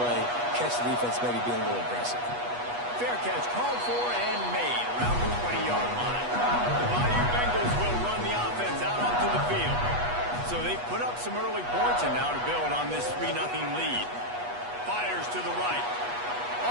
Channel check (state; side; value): late; left; 8.2 ms